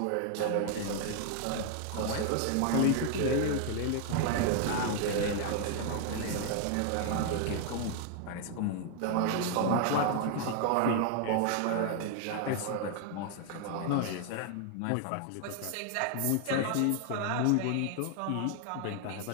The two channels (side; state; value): both; different; correlation 0.00